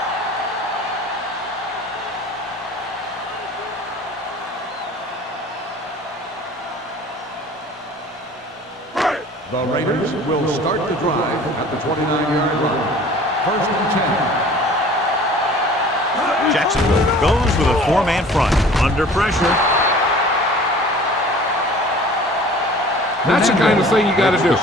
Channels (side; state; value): both; normal; correlation 0.46